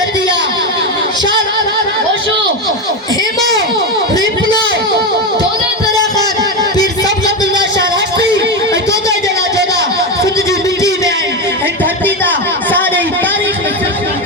शान होशो हेमो रिपलो दोनों तरह का पीर सब अब्दुल्ला शाह राष्ट्री दोनों जला जोदा सिंध जी मिट्टी में आई धरती दा सारे तारीख में।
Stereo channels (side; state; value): both; normal; correlation 0.14